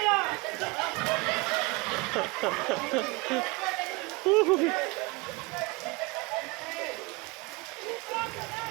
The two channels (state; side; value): quieter; left; 25.8 dB